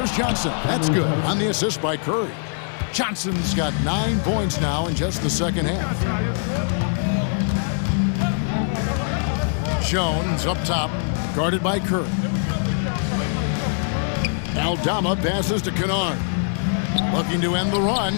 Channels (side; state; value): right; silent; digital silence